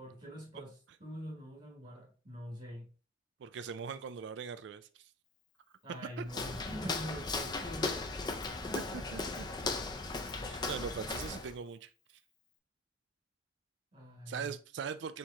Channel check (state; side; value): normal; both; correlation 0.33